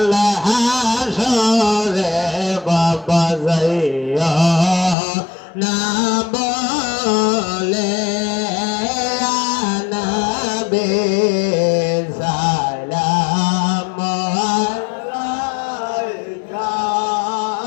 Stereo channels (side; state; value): right; drops out; at 5.0 s